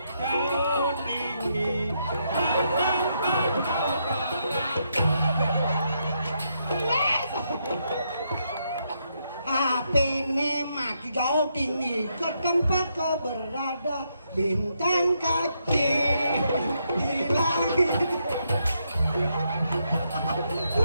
Kau tinggi. HP-nya mati jauh tinggi ke tempat kau berada, bintang kecil di langit.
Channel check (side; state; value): both; inverted; correlation -0.78